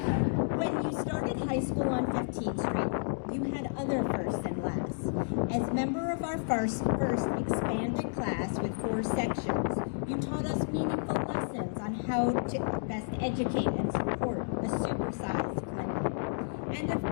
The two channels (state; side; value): silent; right; digital silence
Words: When you started high school on 15th Street, you had other firsts and lasts. As member of our first expanded class with 4 sections, you taught us meaningful lessons on how to best educate and support a supersized Clinton. And